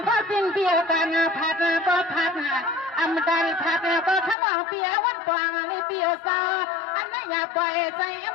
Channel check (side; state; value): right; drops out; at 4.4 s